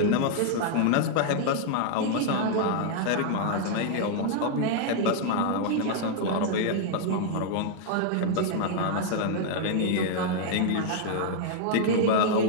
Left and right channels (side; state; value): both; different; correlation -0.01